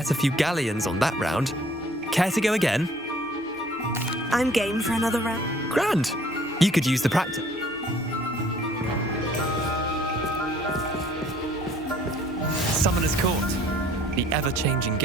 a few galleons on that round. Care to go again? I'm game for another round. Grand. You could use the practice. Summoner's Court, the ever-changing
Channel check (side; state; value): both; normal; correlation 0.57